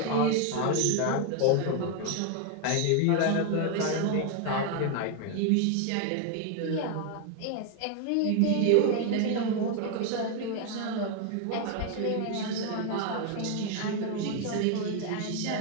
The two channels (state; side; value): different; both; correlation 0.01